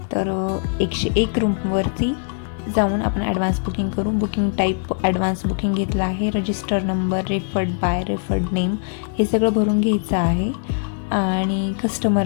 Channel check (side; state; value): right; silent; digital silence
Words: तर 101 रूमवरती जाऊन आपण ॲडव्हान्स बुकिंग करू. बुकिंग टाईप ॲडव्हान्स बुकिंग घेतला आहे. Register number, referred by, referred name हे सगळं भरून घ्यायचं आहे. आणि